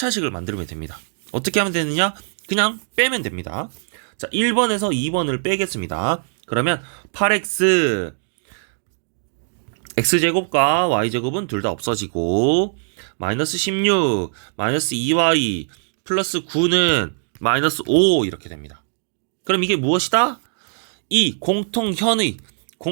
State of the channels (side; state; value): left; silent; digital silence